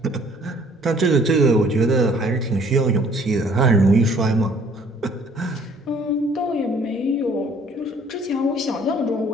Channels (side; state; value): both; normal; correlation 0.58